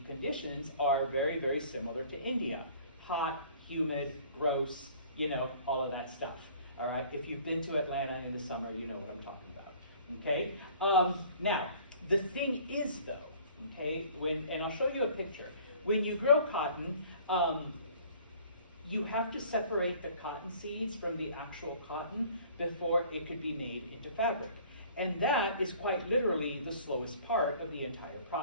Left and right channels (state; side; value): inverted; both; correlation -0.51